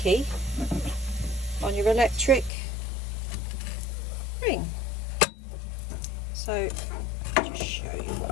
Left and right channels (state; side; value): drops out; right; at 2.5 s